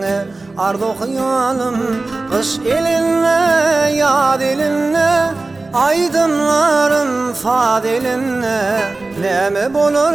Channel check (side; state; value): left; quieter; 3.4 dB